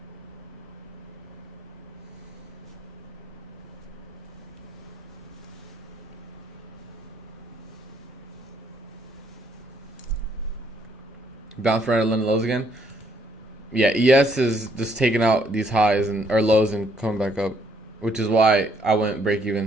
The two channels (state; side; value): normal; both; correlation 0.69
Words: Bounce right at London lows again. Yeah, ES is just taking out these highs or lows and coming back up, which is why I went break